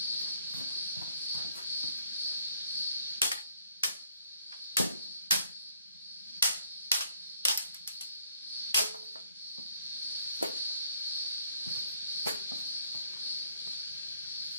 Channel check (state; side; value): inverted; both; correlation -0.67